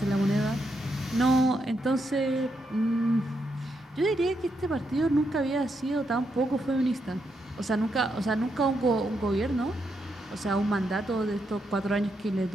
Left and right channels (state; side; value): normal; both; correlation 0.81